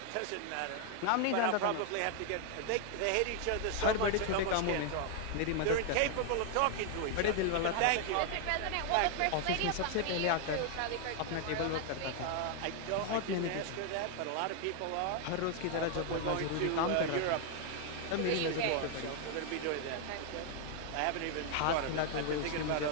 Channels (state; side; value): different; both; correlation 0.00